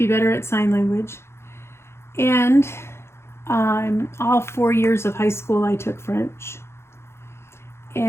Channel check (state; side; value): late; right; 0.12 ms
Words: better at sign language. And all 4 years of high school, I took French.